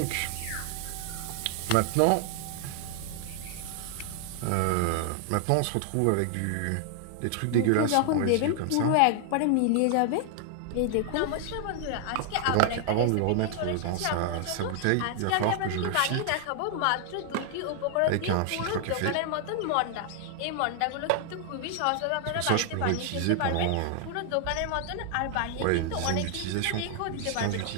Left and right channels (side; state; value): both; different; correlation 0.00